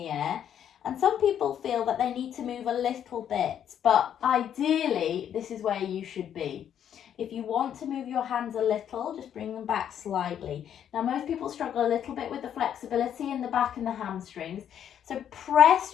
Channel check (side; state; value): right; quieter; 9.5 dB